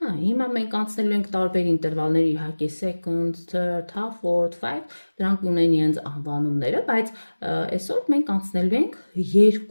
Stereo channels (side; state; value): both; inverted; correlation -1.00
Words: մենք անցնելու ենք տարբեր ինտերվալներ, իհարկե seconds, third, half, fourth, five, դրանք ունեն իրենց անվանումները, բայց այսօր մենք անցնելու ենք